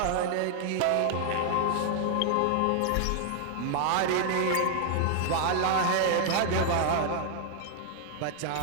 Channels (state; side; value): different; both; correlation 0.00